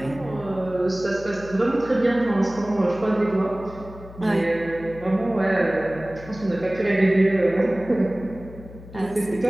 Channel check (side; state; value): left; noise; hum, 17 dB below the sound